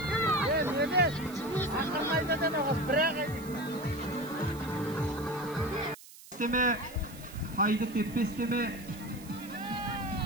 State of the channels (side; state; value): right; noise; hiss, 19 dB below the sound